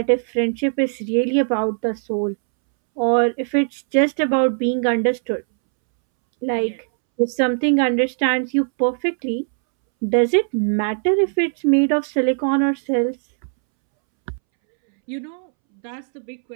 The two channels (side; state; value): left; silent; 66 dB below the other